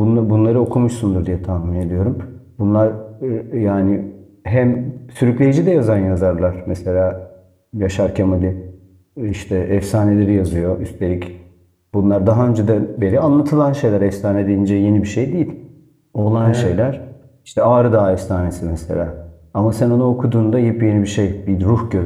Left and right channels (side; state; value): both; identical; correlation 1.00